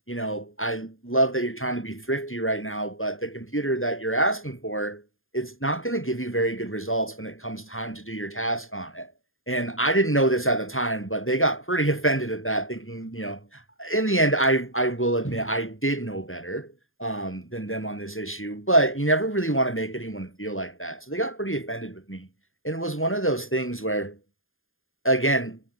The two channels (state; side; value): late; right; 0.60 ms